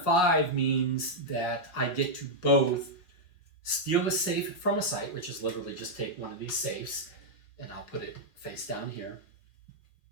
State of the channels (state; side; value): late; right; 5.5 ms